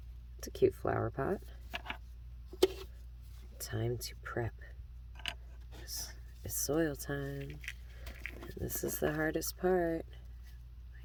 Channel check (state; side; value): identical; both; correlation 1.00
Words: It's a cute flower pot. Time to prep. It's soil time. And this is the hardest part.